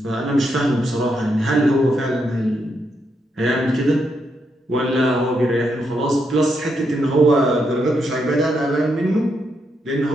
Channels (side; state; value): both; normal; correlation 0.80